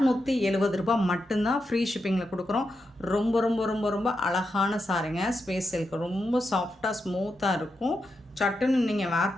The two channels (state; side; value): normal; both; correlation 0.86